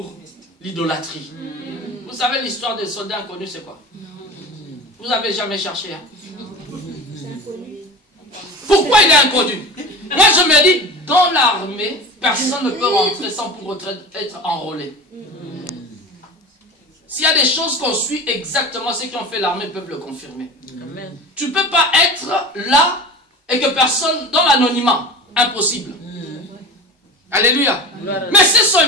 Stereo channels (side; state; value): both; normal; correlation 0.32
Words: l'idolâtrie. Vous savez l'histoire des soldats inconnus, c'est quoi? Vous n'avez jamais cherché. Hein? Pourquoi il est inconnu? Moi je me dis, dans l'armée, personne ne peut rentrer sans pour autant être enrôlé. S'il y a des choses qu'on suit exactement, ceux qui ont fait l'armée peuvent le confirmer. Amen. Tu ne peux pas être là et que personne, dans l'anonymat, impossible. Alléluia. Mais ces